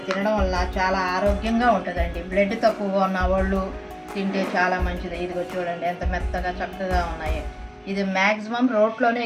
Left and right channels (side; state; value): both; identical; correlation 1.00